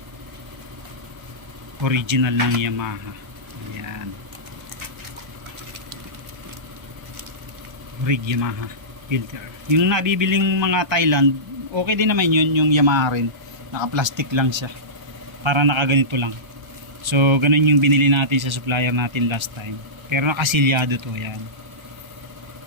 original ng Yamaha. Ayan, rig Yamaha filter. Yung nabibiling mga Thailand, okay din naman yun, yung Yamaha rin, naka plastic lang siya, para nakaganito lang. So ganun yung binili natin sa supplier natin last time, pero nakasilyado to. Yan,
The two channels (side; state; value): left; late; 1.3 ms